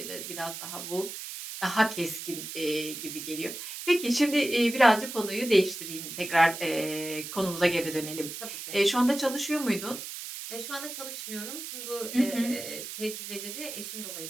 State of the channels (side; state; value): right; noise; hiss, 8 dB below the sound